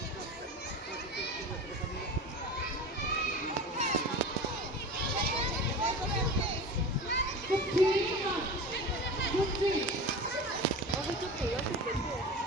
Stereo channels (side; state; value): both; normal; correlation 0.32